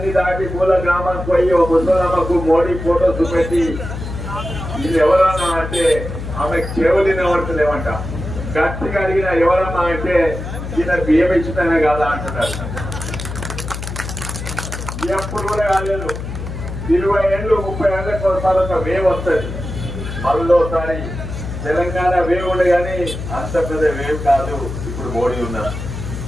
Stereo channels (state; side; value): noise; left; hum, 7 dB below the sound